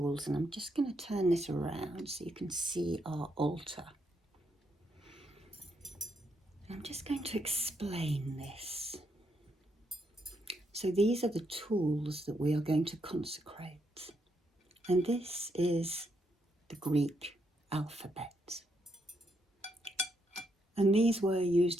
And I'm just going to turn this around so you can see our altar. And I'm just going to explain this. So these are the tools that we are going to consecrate. And this is the Greek alphabet. And these were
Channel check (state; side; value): normal; both; correlation 0.78